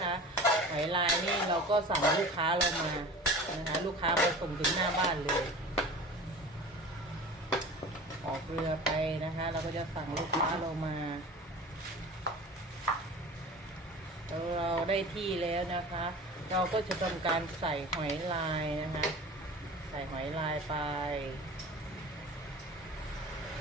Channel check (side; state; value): both; normal; correlation 0.38